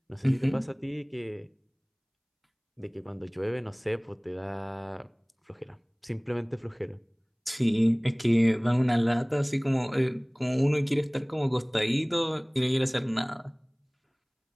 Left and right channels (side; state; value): both; identical; correlation 1.00